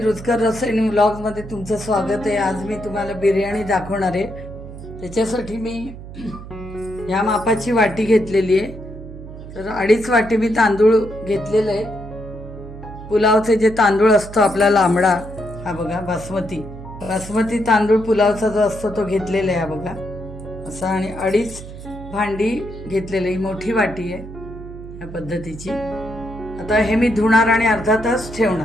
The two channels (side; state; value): right; noise; hum, 13 dB below the sound